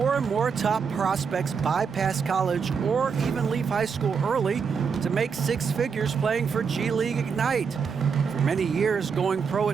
and more top prospects bypass college or even leave high school early to make 6 figures playing for G League Ignite. For many years, going pro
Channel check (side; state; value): left; quieter; 6.0 dB